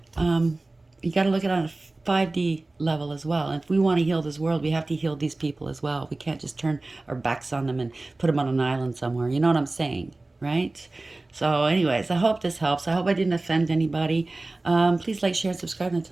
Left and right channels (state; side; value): quieter; left; 3.0 dB